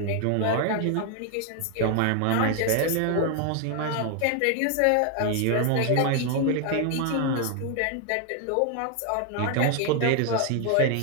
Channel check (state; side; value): different; both; correlation 0.00